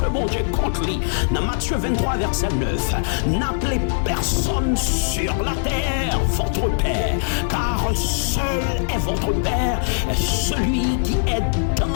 bon Dieu contre lui. Dans Matthieu 23, verset 9, n'appelez personne sur la terre votre père, car seul est votre père, celui qui est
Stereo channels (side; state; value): right; silent; digital silence